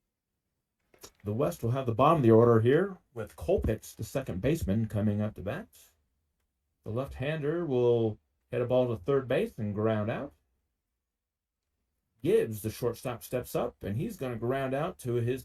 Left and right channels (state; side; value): identical; both; correlation 1.00